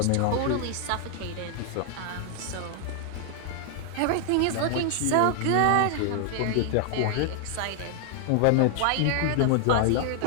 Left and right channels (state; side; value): different; both; correlation 0.00